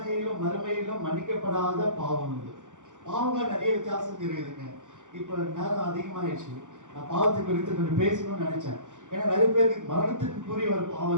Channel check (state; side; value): late; left; 0.86 ms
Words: மறுமையிலும் மன்னிக்கப்படாத பாவம் இது. பாவங்கள் நிறைய வித்தியாசம் இருக்குதுங்க. இப்போ நேரம் அதிகமாயிடுச்சு, நான் பாவத்தை குறித்து கொஞ்சம் பேசணும்னு நினைச்சேன். ஏன்னா நிறைய பேருக்கு மரணத்துக்குரிய ஒரு பாவம்